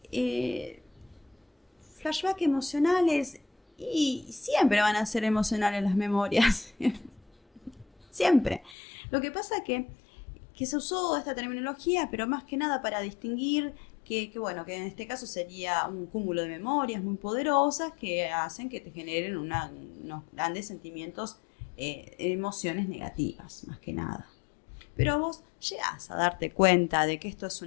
flashback emocionales, y siempre van a ser emocionales las memorias. Siempre. Lo que pasa es que se usó esta terminología, pero más que nada para distinguir que en este caso sería un cúmulo de memorias muy poderosas que hacen que te generen unos grandes sentimientos, emociones negativas, más que nada. Pero vos llegás a darte cuenta de que esto es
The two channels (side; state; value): right; drops out; at 8.8 s